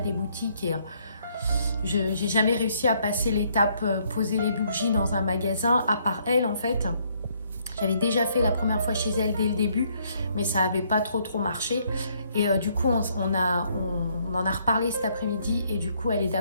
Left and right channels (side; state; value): both; inverted; correlation -0.69